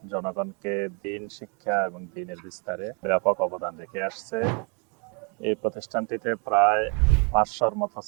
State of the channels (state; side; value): quieter; left; 34.9 dB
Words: জনগণকে দ্বীন শিক্ষা এবং দ্বীনের বিস্তারে ব্যাপক অবদান রেখে আসছে। এই প্রতিষ্ঠানটিতে প্রায় 500-র মতো